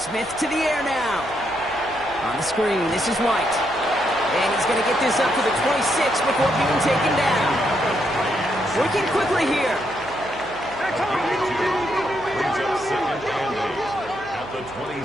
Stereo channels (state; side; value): noise; right; hum, 19 dB below the sound